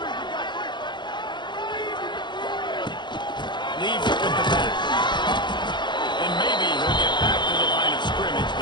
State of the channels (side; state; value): right; late; 0.22 ms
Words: Leaves it with the back. And maybe he'll get back to the line of scrimmage,